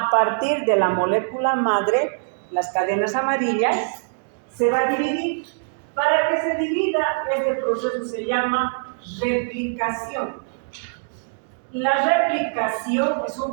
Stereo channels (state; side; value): silent; left; digital silence